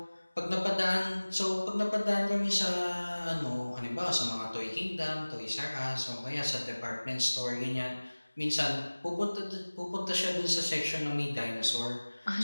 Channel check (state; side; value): inverted; both; correlation -1.00